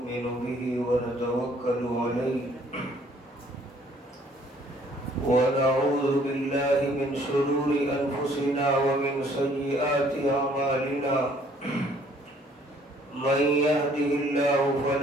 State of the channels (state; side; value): normal; both; correlation 0.60